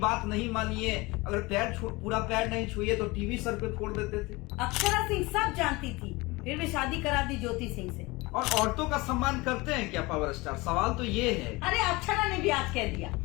नहीं मानिए, अगर पूरा पैर नहीं छुए तो टीवी सर पे फोड़ देते थे। अक्षरा सिंह सब जानती थी, फिर भी शादी करा दी ज्योति सिंह से। और औरतों का सम्मान करते हैं क्या पावर स्टार? सवाल तो ये है। अरे अक्षरा ने भी आज कह दिया,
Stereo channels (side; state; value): right; quieter; 23.3 dB